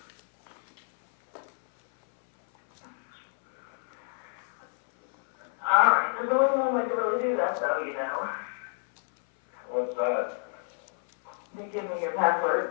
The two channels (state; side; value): silent; right; 59 dB below the other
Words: All right, there's only one way to really do that, though, you know. What's that? You give me your